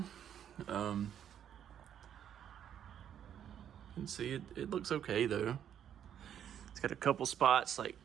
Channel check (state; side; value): quieter; left; 9.5 dB